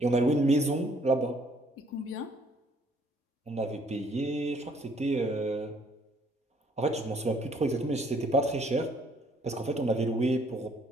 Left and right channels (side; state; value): both; normal; correlation 0.64